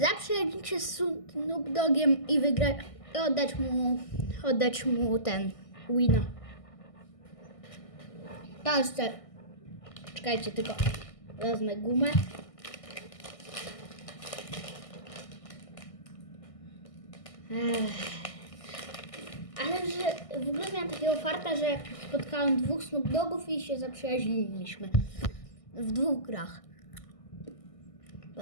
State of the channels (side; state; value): right; late; 1.6 ms